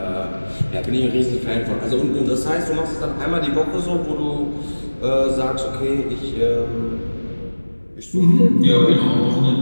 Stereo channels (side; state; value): both; inverted; correlation -1.00